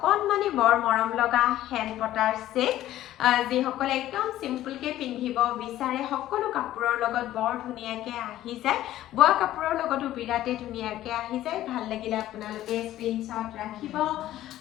বৰ মৰম লগা হেণ্ড পটাৰ সেট। যিসকলে একদম চিম্পলকৈ পিন্ধিব বিচাৰে সকলো কাপোৰৰ লগত বৰ ধুনীয়াকৈ আহি যায়। বোৱা কাপোৰৰ লগতো বিৰাটেই ধুনীয়াকৈ আহি যায়। ভাল লাগিলে আপোনালোকে স্ক্ৰীনশ্বট ৰাখিব।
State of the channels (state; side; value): quieter; right; 13.8 dB